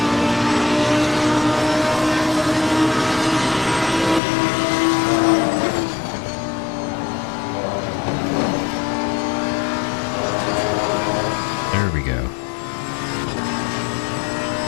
There we go.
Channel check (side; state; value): right; drops out; at 4.2 s